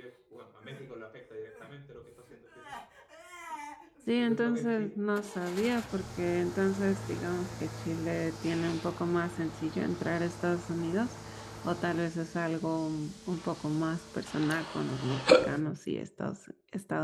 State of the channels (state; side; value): identical; both; correlation 1.00